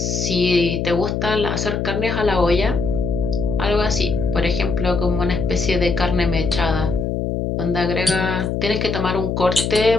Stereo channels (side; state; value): left; noise; hum, 1 dB below the sound